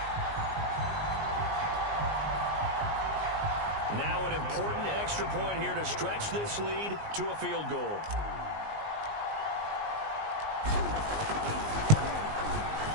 Now an important extra point here to stretch this lead to a field goal.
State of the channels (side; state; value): left; late; 19 ms